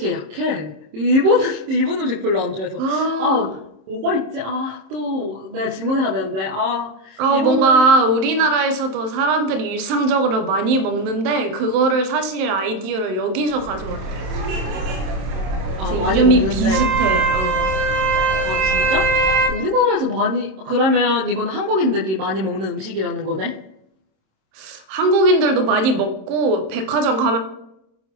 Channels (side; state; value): left; late; 26 ms